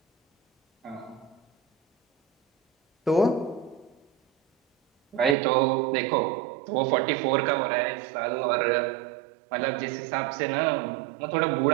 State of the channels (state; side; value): drops out; left; at 5.4 s